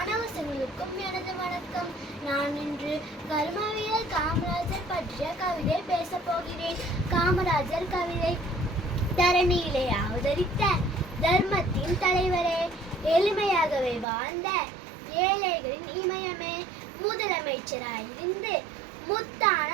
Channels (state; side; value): drops out; left; at 14.1 s